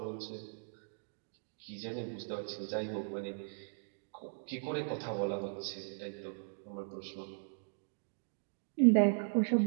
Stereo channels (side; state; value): left; silent; digital silence